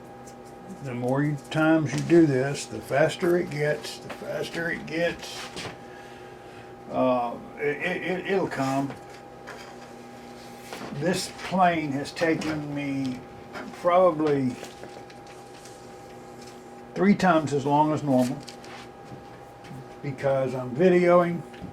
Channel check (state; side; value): identical; both; correlation 1.00